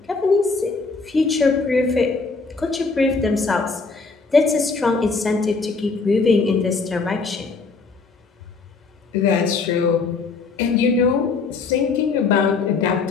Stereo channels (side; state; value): right; quieter; 4.4 dB